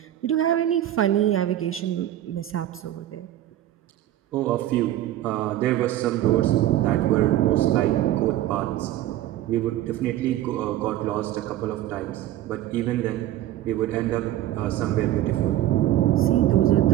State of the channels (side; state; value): left; quieter; 13.4 dB